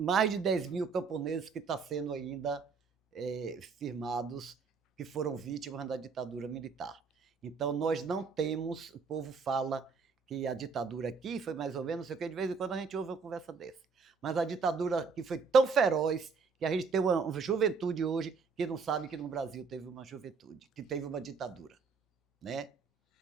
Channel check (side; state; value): left; quieter; 5.1 dB